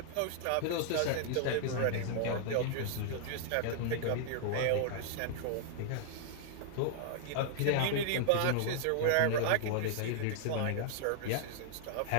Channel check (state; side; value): different; both; correlation -0.01